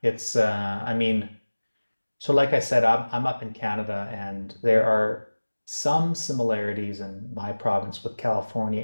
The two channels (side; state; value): both; inverted; correlation -1.00